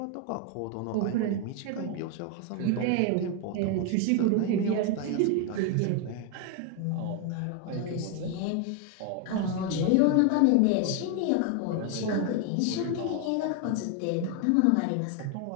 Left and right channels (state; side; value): different; both; correlation 0.01